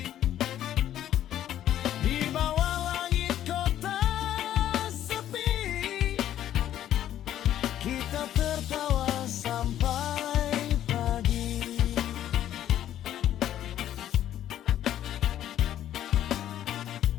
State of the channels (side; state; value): right; quieter; 11.6 dB